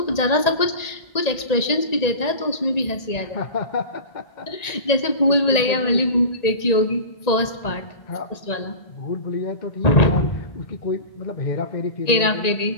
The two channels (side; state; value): right; late; 1.9 ms